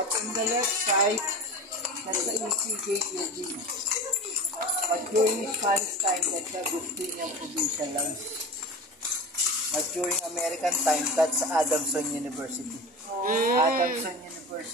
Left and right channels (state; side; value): normal; both; correlation 0.32